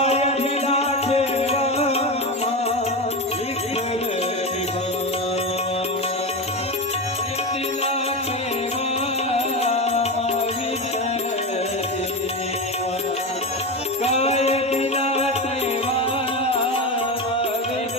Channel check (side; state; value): both; normal; correlation 0.19